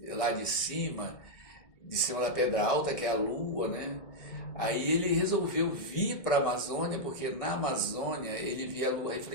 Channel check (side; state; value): right; late; 1.6 ms